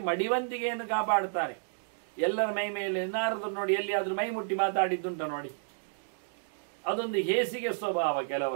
ಮಡಿವಂತಿಗೆಯನ್ನು ಕಾಪಾಡ್ತಾರೆ ಎಲ್ಲರ ಮೈ ಮೇಲೆ. ನಾರದರು ನೋಡಿ ಎಲ್ಲಿಯಾದ್ರೂ ಮೈ ಮುಟ್ಟಿ ಮಾತಾಡಿದ್ದುಂಟ ನೋಡಿ, ಅದೊಂದು ಹೇಸಿಗೆ ಸ್ವಭಾವ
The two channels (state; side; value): silent; left; digital silence